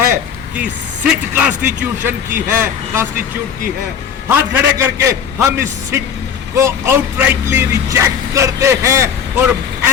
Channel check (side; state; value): right; quieter; 7.7 dB